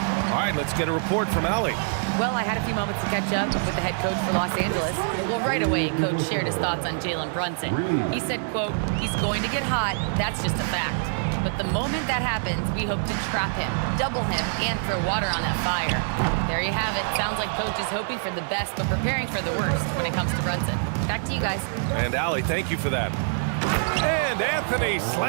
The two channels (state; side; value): silent; left; digital silence